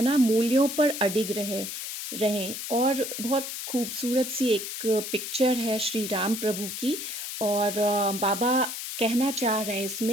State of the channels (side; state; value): left; noise; hiss, 6 dB below the sound